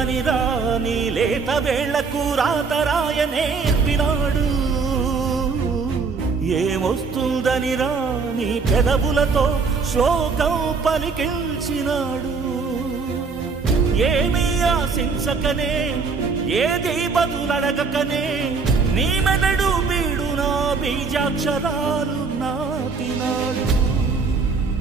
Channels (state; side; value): quieter; left; 4.8 dB